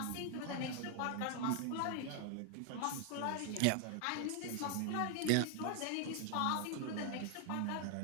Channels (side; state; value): both; different; correlation 0.00